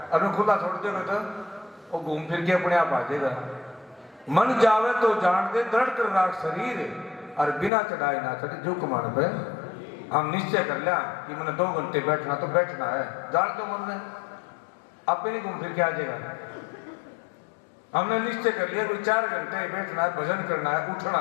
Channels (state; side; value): drops out; right; at 7.7 s